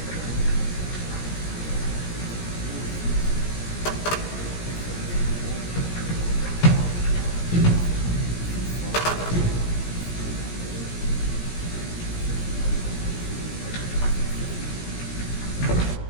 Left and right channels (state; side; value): late; right; 17 ms